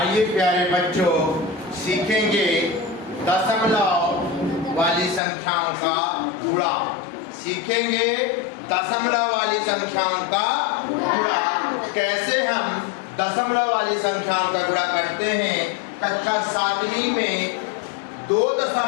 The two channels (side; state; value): right; drops out; at 5.2 s